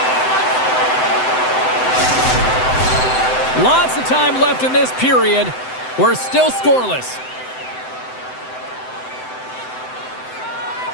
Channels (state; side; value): late; right; 7.8 ms